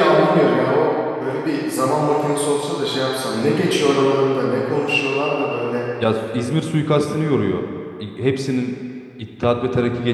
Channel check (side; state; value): both; identical; correlation 1.00